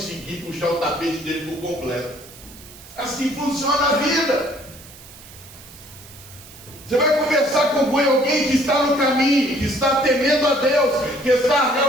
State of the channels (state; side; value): noise; right; hiss, 19 dB below the sound